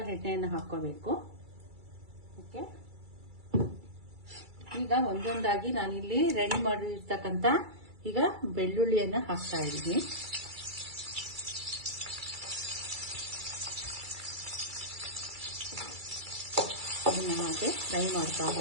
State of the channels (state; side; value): late; left; 2.3 ms